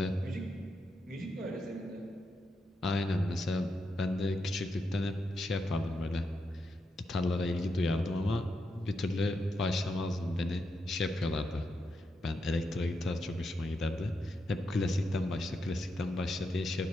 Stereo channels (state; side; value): normal; both; correlation 0.84